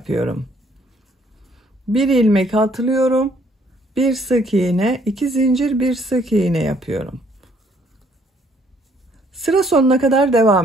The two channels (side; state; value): both; normal; correlation 0.65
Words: Bir ilmek atlıyorum. Bir sık iğne, 2 zincir, bir sık iğne yapıyorum. Sıra sonuna kadar